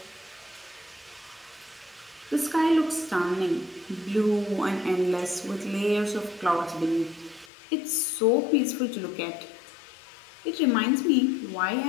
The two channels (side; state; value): right; drops out; at 7.5 s